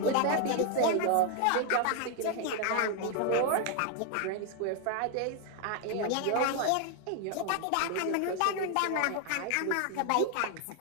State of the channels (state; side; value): different; both; correlation 0.00